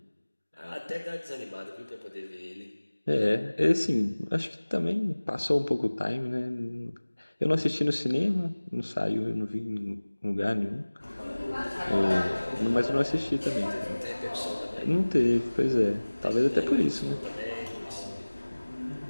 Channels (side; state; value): both; inverted; correlation -1.00